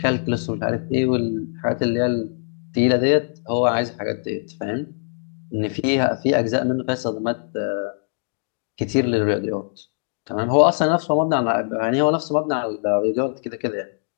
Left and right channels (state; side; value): silent; right; digital silence